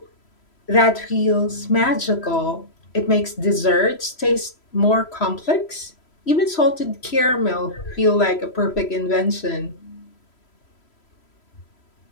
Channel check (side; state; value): right; late; 3.0 ms